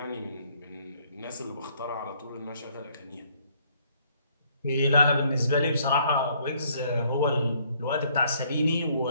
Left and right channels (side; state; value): both; inverted; correlation -0.64